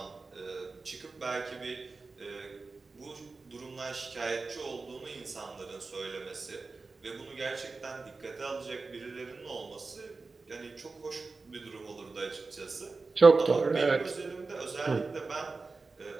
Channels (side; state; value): left; quieter; 4.0 dB